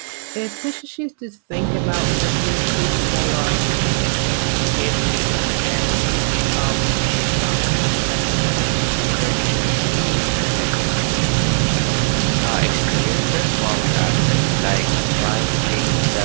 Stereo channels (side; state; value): left; silent; 67 dB below the other